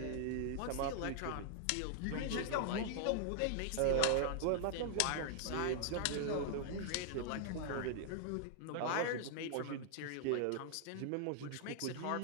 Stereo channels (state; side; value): different; both; correlation 0.00